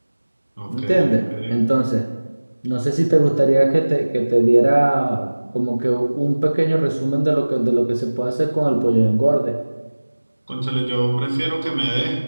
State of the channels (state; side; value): inverted; both; correlation -1.00